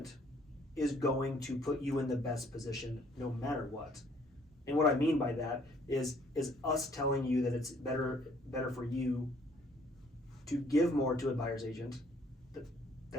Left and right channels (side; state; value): both; normal; correlation 0.61